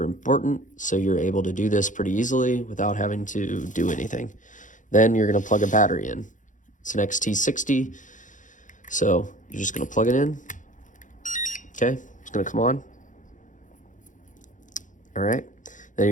important, so you're able to do this pretty easily without having to do anything. Then you're gonna plug a battery in. It's an XT60, so you're just gonna plug it in, okay? It's gonna come on. All right, then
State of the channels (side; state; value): right; late; 0.37 ms